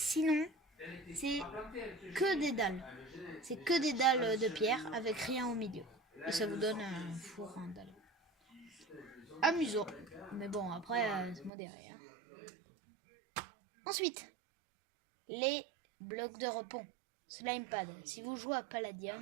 c'est que des dalles. C'est que des dalles de pierre avec rien au milieu. Et ça vous donne un four en dalle. Amusant. Mais bon, après, c'est modéré. Hein. Ensuite, les blocs de repos. Slime pad. Si vous jouez à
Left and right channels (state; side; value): drops out; left; at 11.5 s